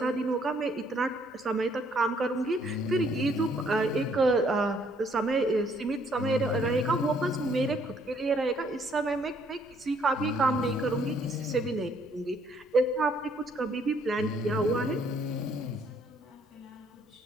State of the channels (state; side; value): normal; both; correlation 0.66